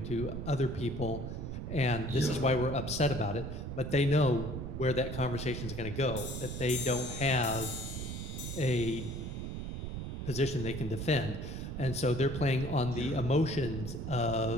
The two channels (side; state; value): right; noise; rumble, 5 dB below the sound